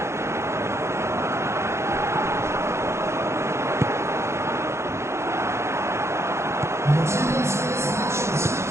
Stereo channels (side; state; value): left; late; 0.13 ms